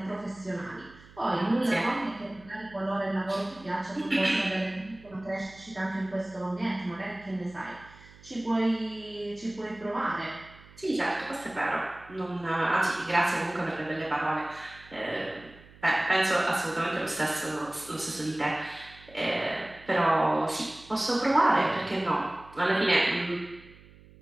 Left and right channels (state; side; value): noise; right; hum, 23 dB below the sound